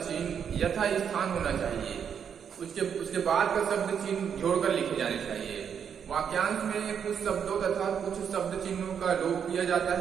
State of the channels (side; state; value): left; quieter; 7.7 dB